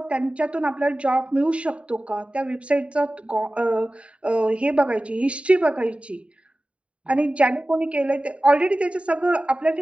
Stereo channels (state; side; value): late; left; 0.062 ms